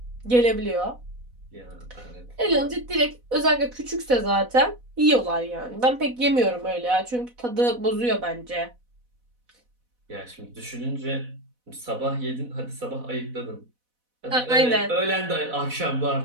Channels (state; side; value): late; left; 4.1 ms